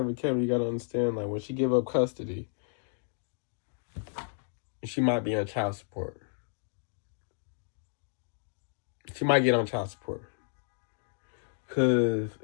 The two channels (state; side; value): silent; right; digital silence